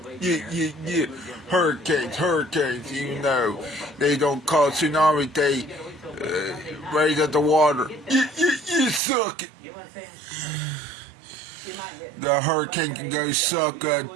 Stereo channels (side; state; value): left; drops out; at 9.0 s